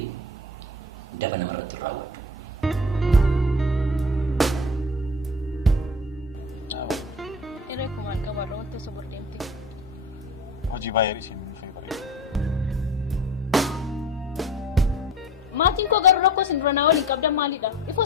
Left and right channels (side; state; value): both; normal; correlation 0.36